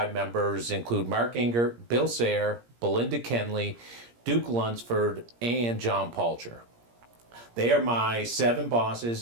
members include Mark Ingert, Bill Sayre, Belinda Kenley, Duke Lunsford, and John Palcher. They are my 7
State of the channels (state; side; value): late; left; 17 ms